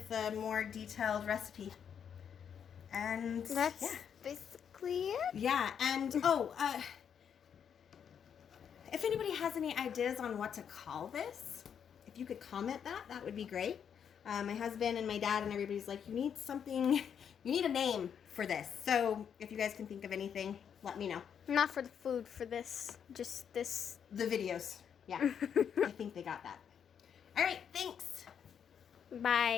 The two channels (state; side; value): quieter; right; 7.9 dB